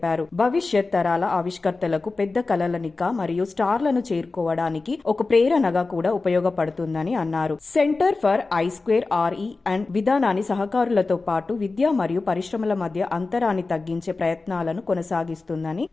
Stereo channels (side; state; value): right; quieter; 3.7 dB